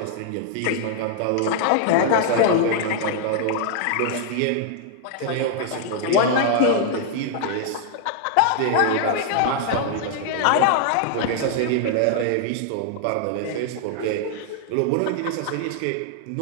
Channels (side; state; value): both; different; correlation 0.00